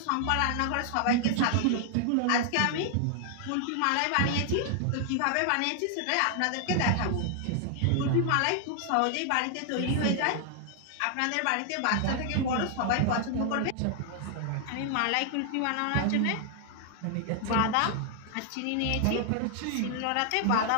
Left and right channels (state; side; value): different; both; correlation 0.00